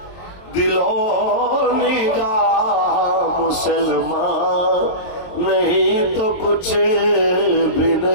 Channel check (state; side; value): late; right; 23 ms